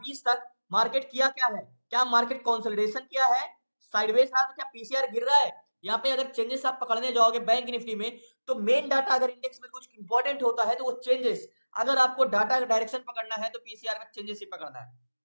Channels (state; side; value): inverted; both; correlation -1.00